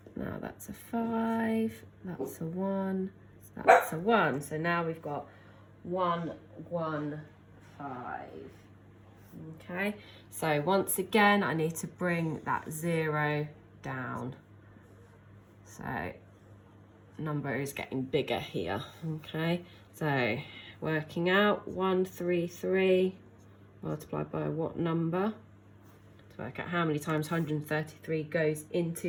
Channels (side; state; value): both; identical; correlation 1.00